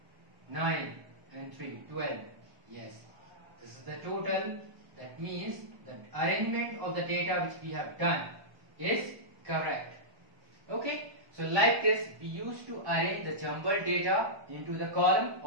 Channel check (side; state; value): left; late; 1.0 ms